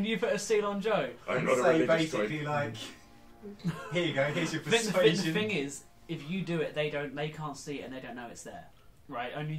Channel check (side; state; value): both; identical; correlation 1.00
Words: you put a seal on Joe? I'm not a Say religious basically guy. like, here you go. Here's your The persuasion. thing is, if you do it, they can't see it and they don't know it's there. Right? Only